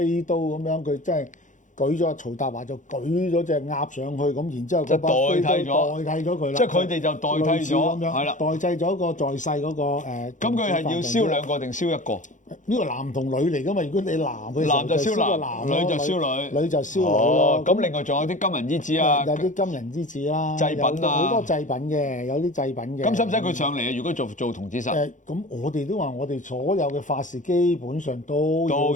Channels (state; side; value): late; right; 0.36 ms